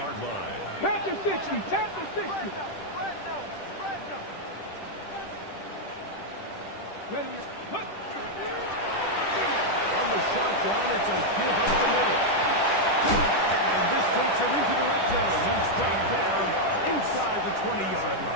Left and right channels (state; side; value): late; right; 10 ms